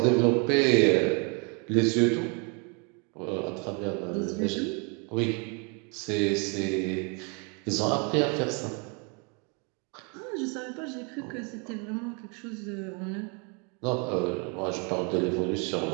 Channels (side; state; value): left; quieter; 34.4 dB